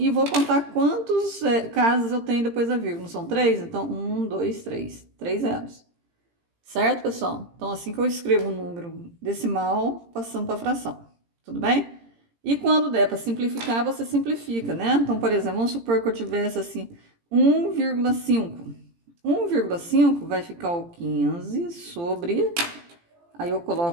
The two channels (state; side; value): late; left; 17 ms